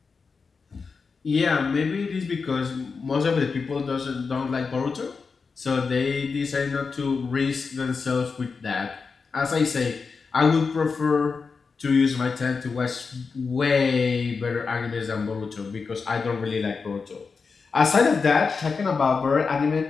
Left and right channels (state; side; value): quieter; right; 4.9 dB